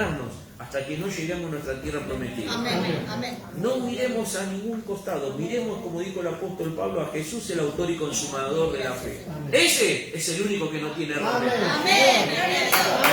hasta que no lleguemos a nuestra tierra prometida. No miremos a ningún costado, miremos, como dijo el apóstol Pablo, a Jesús, el autor y consumador de la fe. Ese es el único que no tiene error.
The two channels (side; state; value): both; identical; correlation 1.00